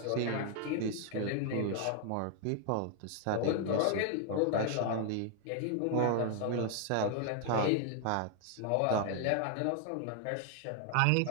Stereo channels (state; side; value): different; both; correlation 0.00